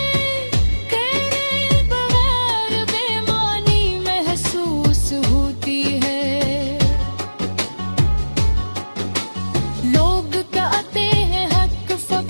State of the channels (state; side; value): inverted; both; correlation -1.00